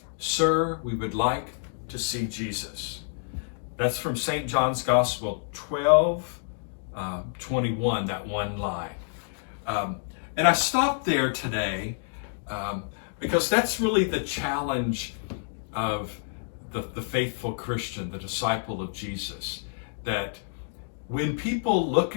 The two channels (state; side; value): silent; right; digital silence